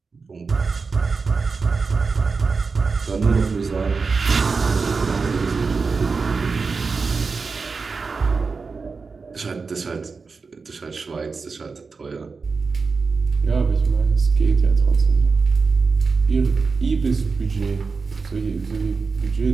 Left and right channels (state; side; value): quieter; left; 4.6 dB